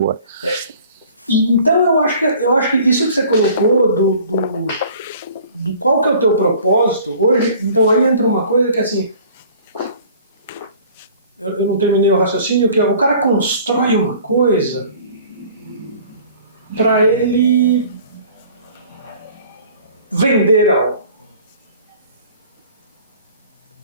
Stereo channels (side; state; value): both; inverted; correlation -0.49